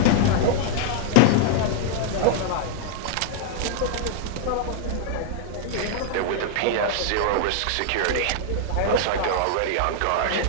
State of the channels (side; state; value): both; different; correlation 0.00